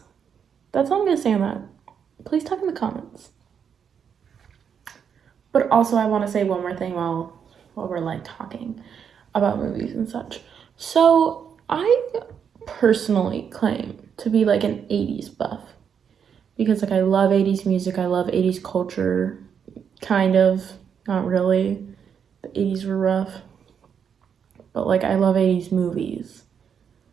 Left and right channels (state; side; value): quieter; left; 7.4 dB